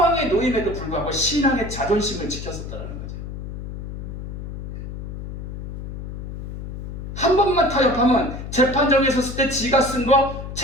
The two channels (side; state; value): left; noise; hum, 8 dB below the sound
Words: 놓임에도 불구하고 신앙의 자존심을 지켰었다는 거죠. 한 번만 타협하면 재판정에 섰을 때 지가 쓴 거